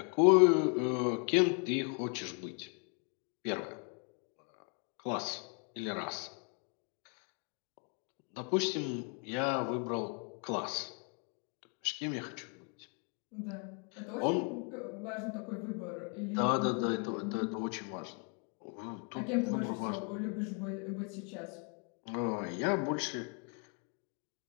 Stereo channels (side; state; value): right; quieter; 38.8 dB